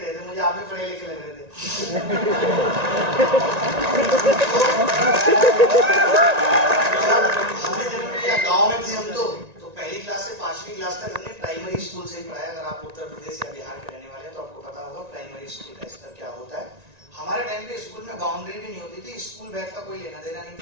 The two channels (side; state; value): left; late; 1.9 ms